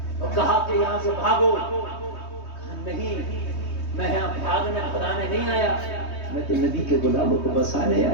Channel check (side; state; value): right; late; 3.2 ms